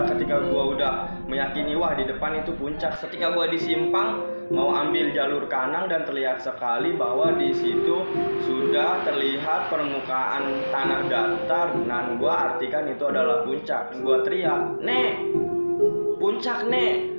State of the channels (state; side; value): inverted; both; correlation -1.00